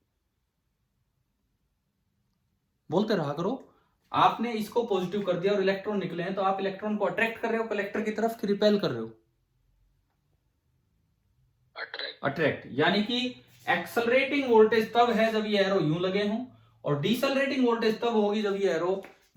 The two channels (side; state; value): both; identical; correlation 1.00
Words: बोलते रहा करो। आपने इसको पॉजिटिव कर दिया और इलेक्ट्रॉन निकले हैं, तो आप इलेक्ट्रॉन को अट्रैक्ट कर रहे हो कलेक्टर की तरफ कि रिपेल कर रहे हो, अट्रैक्ट। यानी कि एक्सेलरेटिंग वोल्टेज तब है जब ये एरो यूं लगे हों, और डिसेलरेटिंग वोल्टेज तब होगी जब ये एरो